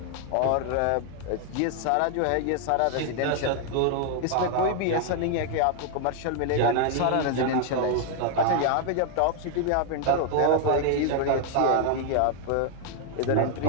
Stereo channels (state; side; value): different; both; correlation 0.00